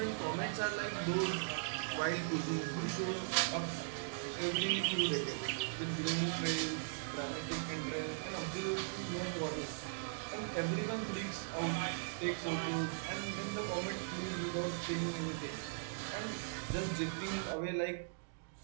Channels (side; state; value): left; silent; digital silence